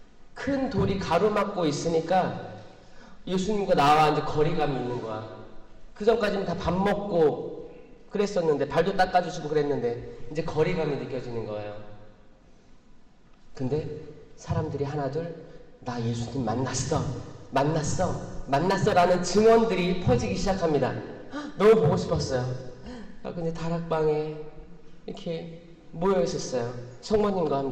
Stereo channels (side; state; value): both; identical; correlation 1.00